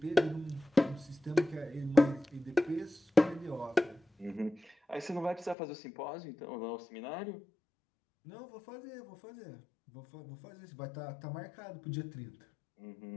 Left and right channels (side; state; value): right; drops out; at 5.6 s